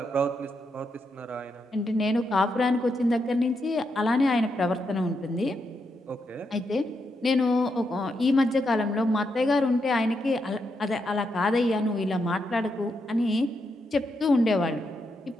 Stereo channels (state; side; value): normal; both; correlation 0.82